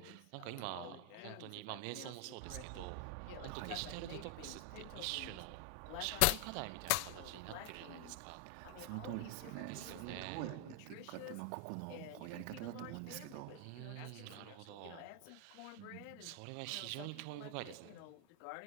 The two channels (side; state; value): both; different; correlation 0.01